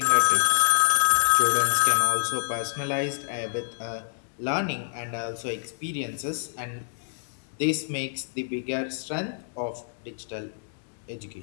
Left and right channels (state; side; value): silent; right; digital silence